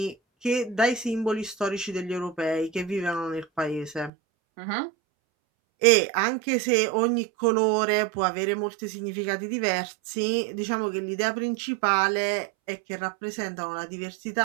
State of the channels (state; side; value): drops out; left; at 4.1 s